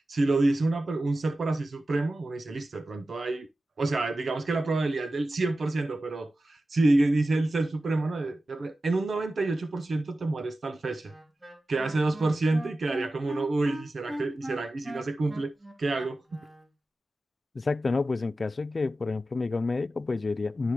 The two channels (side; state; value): both; normal; correlation 0.94